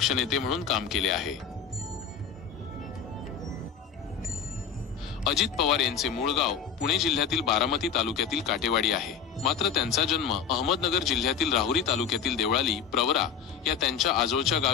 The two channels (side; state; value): right; quieter; 7.1 dB